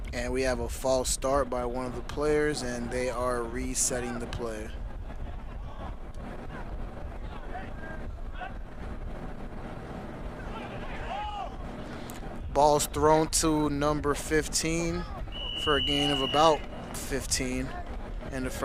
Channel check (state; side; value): identical; both; correlation 1.00